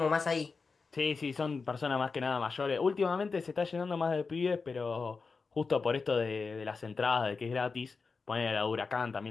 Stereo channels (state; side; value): quieter; right; 4.6 dB